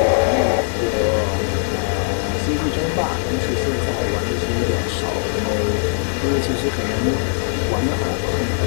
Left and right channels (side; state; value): right; silent; 63 dB below the other